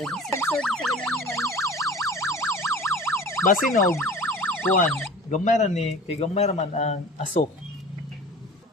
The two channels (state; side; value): normal; both; correlation 0.40